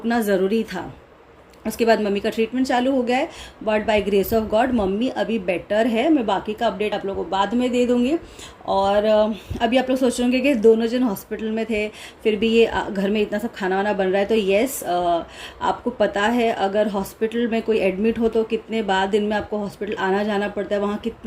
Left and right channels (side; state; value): both; identical; correlation 1.00